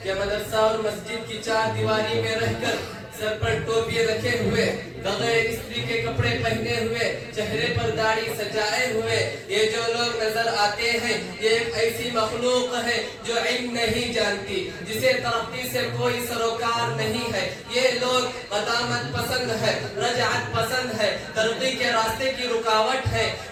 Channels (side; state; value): both; identical; correlation 1.00